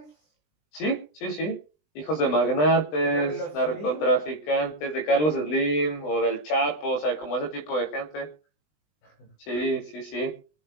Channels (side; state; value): right; late; 20 ms